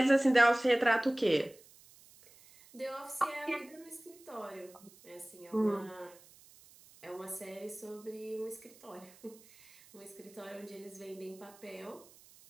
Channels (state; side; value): noise; right; hiss, 24 dB below the sound